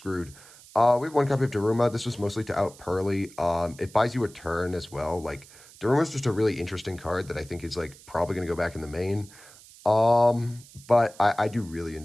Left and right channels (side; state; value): right; noise; hiss, 22 dB below the sound